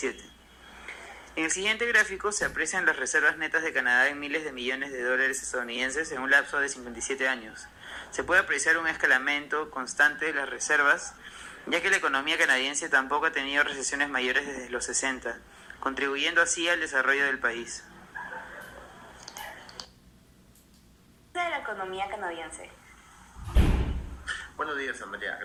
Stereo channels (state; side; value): identical; both; correlation 1.00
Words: En el siguiente gráfico se aprecian las reservas netas de Canadá en miles de millones de dólares estadounidenses en un lapso de 57 años. Se puede apreciar un escalamiento constante de las reservas, ya que la economía canadiense tampoco ha tenido recesiones mayores desde los 60, contribuyendo así al desarrollo del país. De la economía canadiense. Buenos días, Amalia.